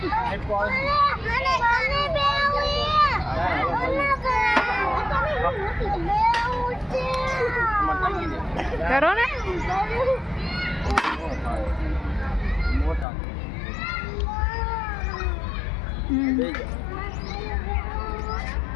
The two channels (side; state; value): right; drops out; at 13.1 s